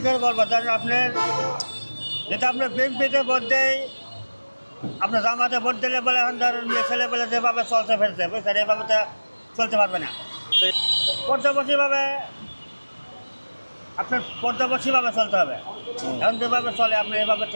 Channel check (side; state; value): both; inverted; correlation -1.00